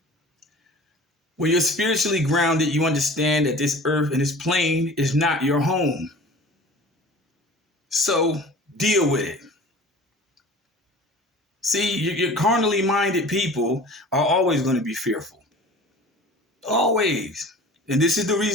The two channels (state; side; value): normal; both; correlation 0.42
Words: When you're spiritually grounded, you understand that this earth and this plane is not your home. So deal with it. See, your carnally minded people are always going to be fearful. Always. And this is the